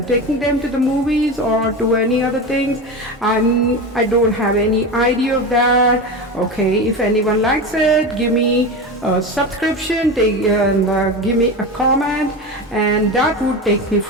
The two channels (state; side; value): normal; both; correlation 0.23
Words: taking them to the movies or to any other things. I don't have any idea of that. Okay, if anyone likes it, give me a subscription, give me a comment, and that would take me